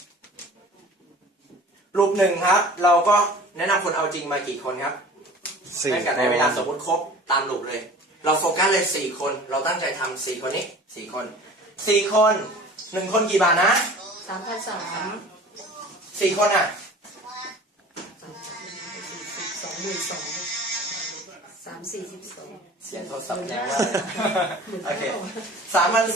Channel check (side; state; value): both; normal; correlation 0.43